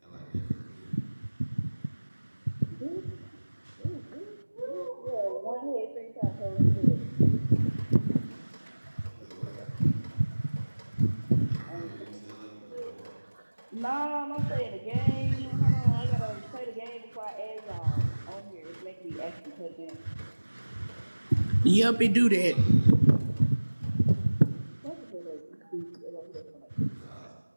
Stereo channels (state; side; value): inverted; both; correlation -1.00